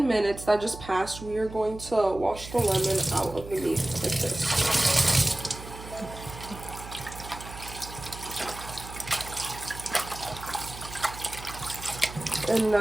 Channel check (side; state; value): right; noise; hum, 13 dB below the sound